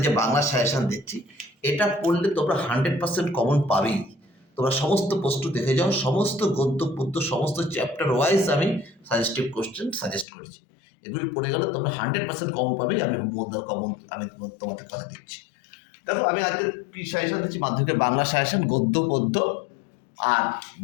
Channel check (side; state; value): right; drops out; at 10.2 s